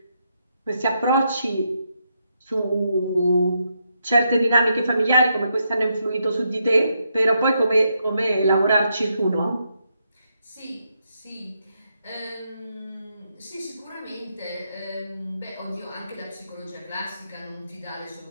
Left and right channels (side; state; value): both; inverted; correlation -0.80